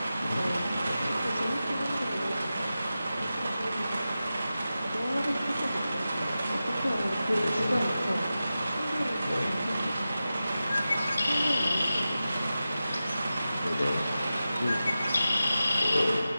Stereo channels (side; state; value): both; inverted; correlation -0.93